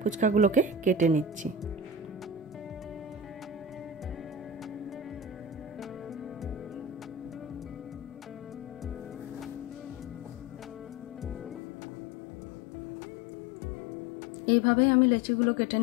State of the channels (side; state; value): right; drops out; at 11.6 s